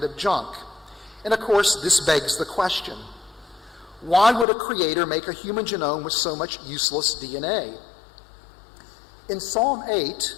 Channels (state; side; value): drops out; right; at 4.5 s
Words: of junk. And of course, this begs the question, why would a creator make a human genome with so much useless DNA? In Psalm 8,